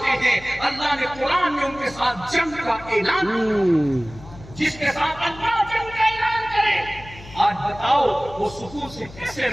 हैं अल्लाह ने कुरान में उनके साथ जंग का ऐलान किया। जिसके साथ अल्लाह जंग का ऐलान करे, आज बताओ वो सुकून से कैसे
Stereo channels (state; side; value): noise; left; hum, 18 dB below the sound